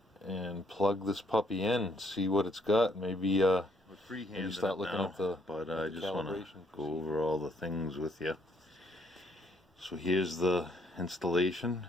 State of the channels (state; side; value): normal; both; correlation 0.68